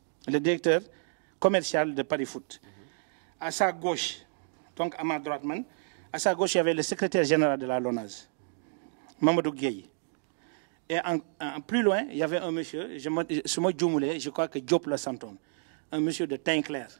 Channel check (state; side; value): silent; left; digital silence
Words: le directeur commercial de Paris Foot. À sa gauche, donc à ma droite, à sa gauche, il y avait le secrétaire général de la LONASE, Mamadou Gueye. Et plus loin, il y avait un monsieur, je crois que Diop le Santon, un monsieur de teint clair.